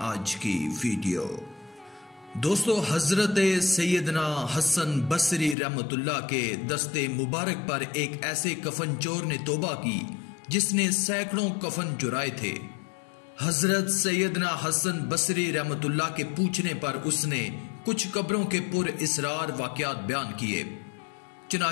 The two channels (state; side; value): drops out; right; at 5.6 s